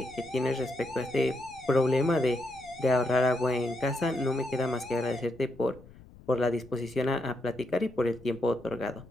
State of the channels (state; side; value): noise; left; rumble, 22 dB below the sound